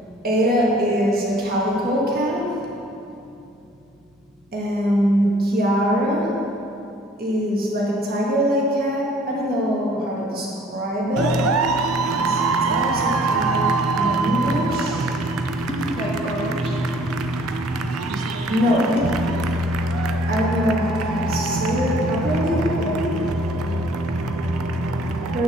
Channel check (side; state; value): both; normal; correlation 0.56